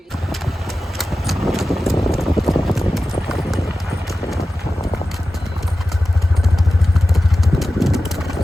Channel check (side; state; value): both; normal; correlation 0.94